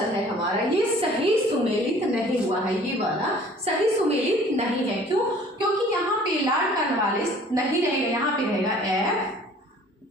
है हमारा, ये सही सुमेलित नहीं हुआ है। ये वाला सही सुमेलित नहीं है, क्यों, क्योंकि यहाँ पे लॉर्ड कॉर्नवालिस नहीं रहेगा, यहाँ पे रहेगा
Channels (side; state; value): both; normal; correlation 0.51